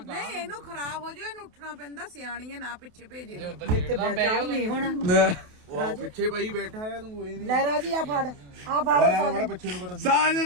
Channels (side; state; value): left; late; 28 ms